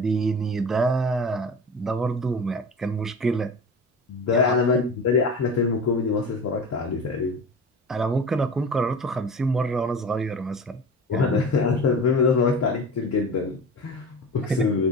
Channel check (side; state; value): both; normal; correlation 0.33